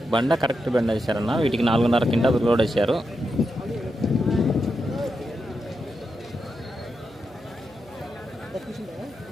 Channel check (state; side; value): noise; right; hum, 25 dB below the sound